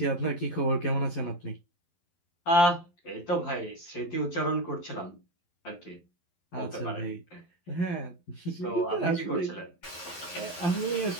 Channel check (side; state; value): right; late; 11 ms